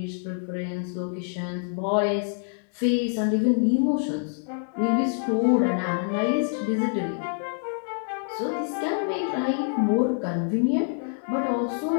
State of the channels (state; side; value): silent; right; digital silence